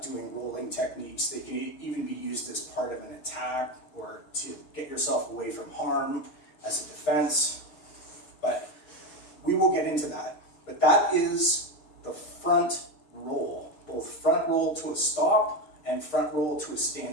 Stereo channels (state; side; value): late; right; 6.4 ms